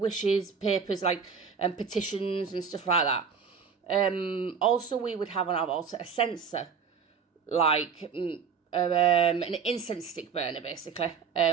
papers, like petitions and stuff like that. Also, we would have on our altar a censer, like an incense stick burner, basically.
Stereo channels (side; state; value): left; quieter; 6.1 dB